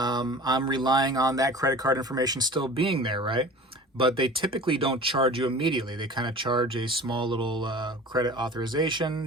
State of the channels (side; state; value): both; normal; correlation 0.40